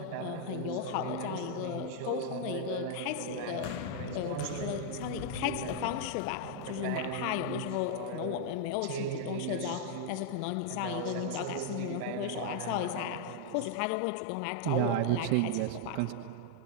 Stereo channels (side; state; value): both; different; correlation 0.00